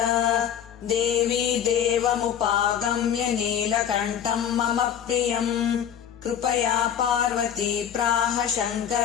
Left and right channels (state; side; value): quieter; right; 9.2 dB